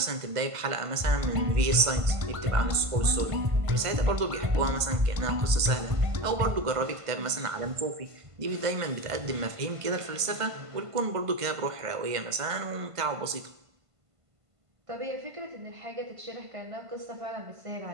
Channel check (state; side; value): late; left; 1.5 ms